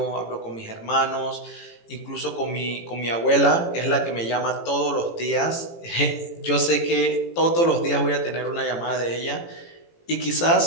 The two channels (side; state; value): right; late; 18 ms